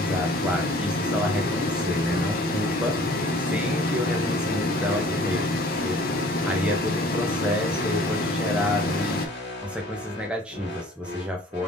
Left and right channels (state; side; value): normal; both; correlation 0.51